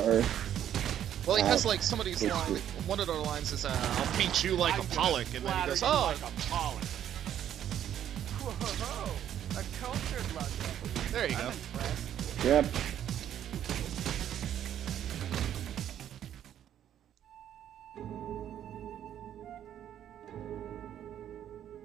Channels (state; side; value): quieter; left; 10.5 dB